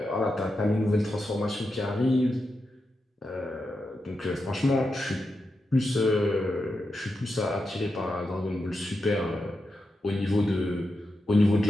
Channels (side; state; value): both; normal; correlation 0.88